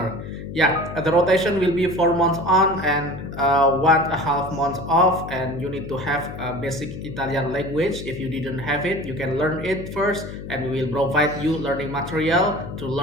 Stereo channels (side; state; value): left; noise; hum, 11 dB below the sound